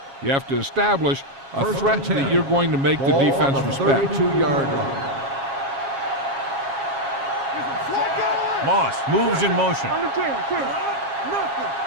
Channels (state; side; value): late; left; 7.3 ms